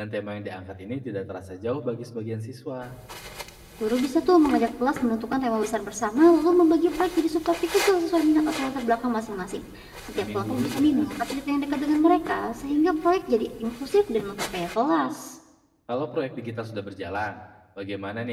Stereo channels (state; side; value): identical; both; correlation 1.00